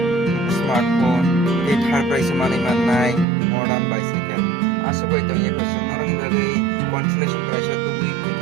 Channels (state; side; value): drops out; left; at 3.2 s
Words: smartphone tei third prize mani manai modern bicycle asogoi to ye question norong ni bagi consolation prize tubui